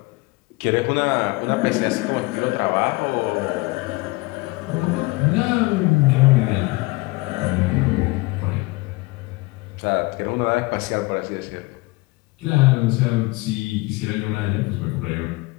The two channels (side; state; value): right; quieter; 23.8 dB